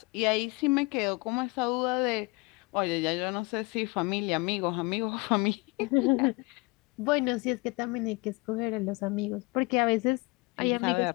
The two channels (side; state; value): right; quieter; 26.0 dB